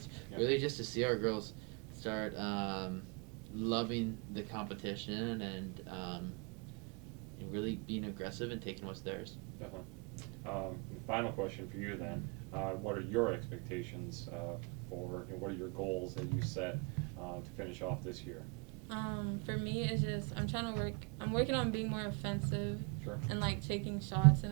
Yep. Really just to see our girls start loving the competition and really being aggressive and taking what's theirs. Definitely. Final question for you then. What are your expectations for, what are your goals that you set to finish off this year? For me, it's just I'm working on being more offensive. Sure. And like taking shots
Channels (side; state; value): left; quieter; 32.4 dB